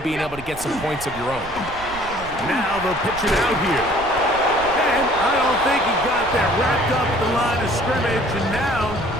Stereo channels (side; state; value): right; noise; rumble, 15 dB below the sound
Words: being able to get some points of your own. Now they'll pitch it out here. And I don't think he got that wrapped up at the line of scrimmage, and now